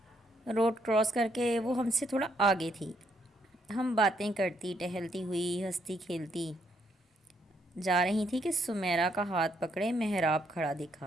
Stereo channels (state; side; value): normal; both; correlation 0.74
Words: روڈ کراس کر کے وہ ہم سے تھوڑا آگے تھی۔ ہم باتیں کرتی ٹہلتی ہوئی، ہنستی کھیلتی جا رہی تھی کہ سمیرا کا ہاتھ پکڑے محراب کھڑا